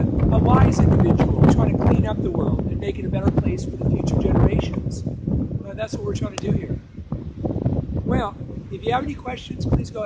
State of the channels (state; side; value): identical; both; correlation 1.00